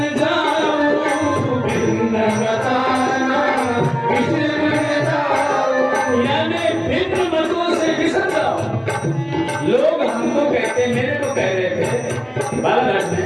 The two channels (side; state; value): both; identical; correlation 1.00